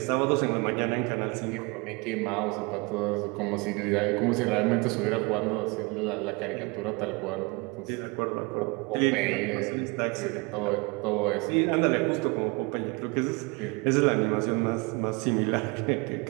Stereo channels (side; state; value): left; quieter; 28.2 dB